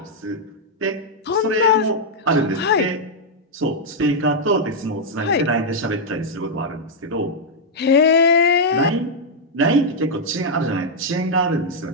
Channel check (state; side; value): normal; both; correlation -0.04